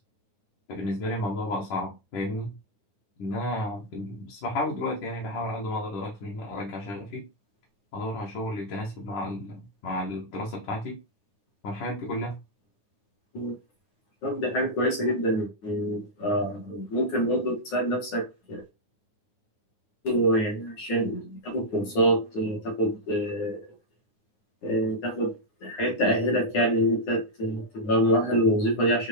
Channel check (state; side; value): late; right; 9.6 ms